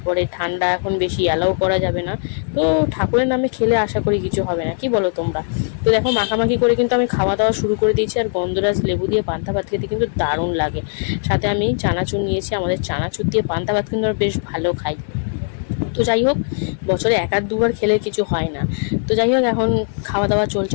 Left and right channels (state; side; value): silent; right; digital silence